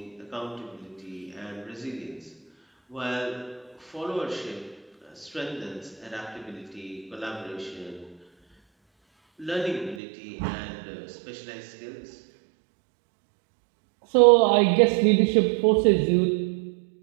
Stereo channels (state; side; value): drops out; left; at 10.0 s